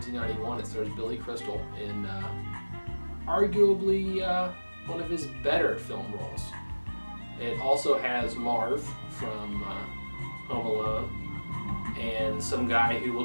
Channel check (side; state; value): both; inverted; correlation -1.00